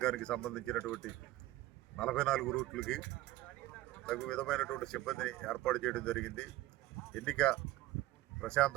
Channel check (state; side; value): quieter; left; 16.5 dB